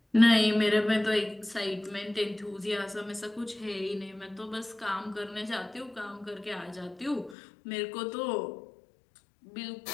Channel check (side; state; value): right; drops out; at 7.4 s